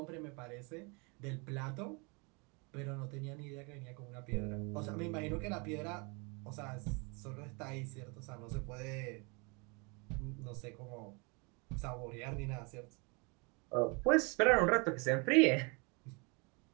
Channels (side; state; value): left; quieter; 31.2 dB